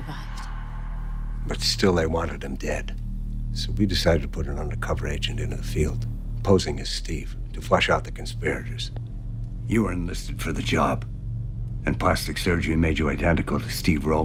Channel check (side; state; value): both; identical; correlation 1.00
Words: But still they wanted him dead. So we decided to put an undercover agent into the field, posing as Steve, to flush out the conspirators. You were enlisted for the job, and plastic surgery made you identical to Steve